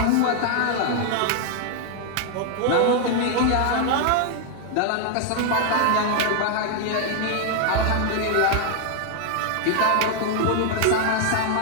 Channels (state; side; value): different; both; correlation 0.00